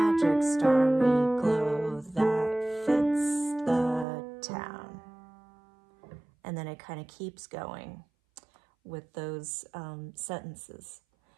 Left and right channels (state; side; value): drops out; left; at 4.0 s